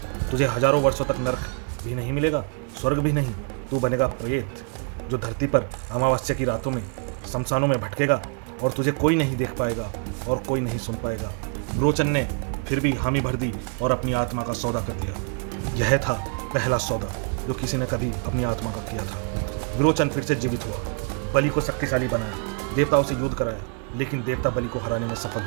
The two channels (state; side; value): quieter; left; 36.6 dB